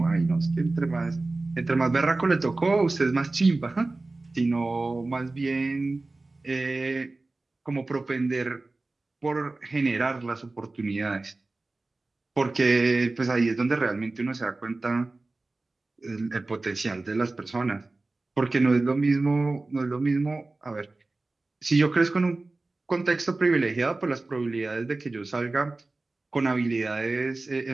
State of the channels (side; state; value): left; quieter; 3.2 dB